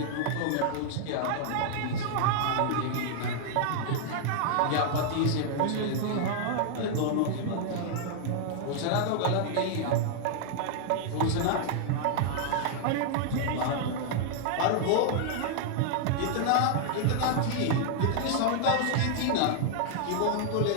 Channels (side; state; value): both; different; correlation -0.01